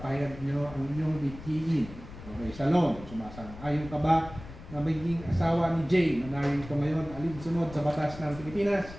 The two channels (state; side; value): noise; left; rumble, 15 dB below the sound